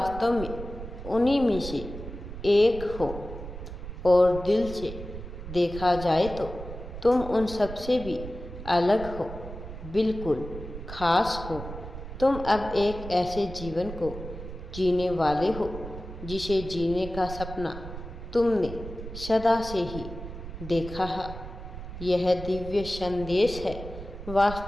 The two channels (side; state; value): right; noise; rumble, 10 dB below the sound